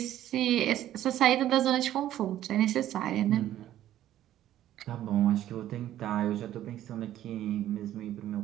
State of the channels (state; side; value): quieter; left; 12.6 dB